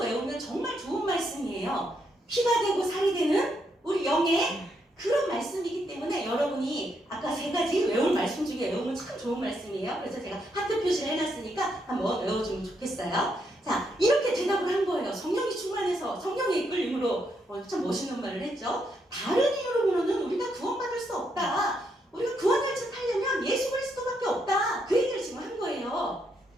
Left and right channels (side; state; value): both; normal; correlation 0.78